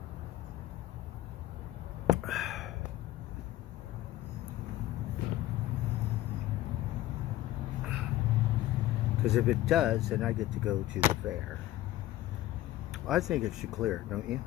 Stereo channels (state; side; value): quieter; right; 14.8 dB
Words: Because if it does, then I get to go to the fair. I think it should clear, don't you?